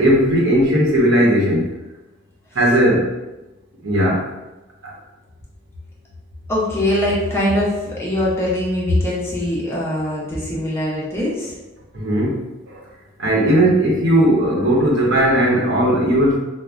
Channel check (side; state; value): both; normal; correlation 0.47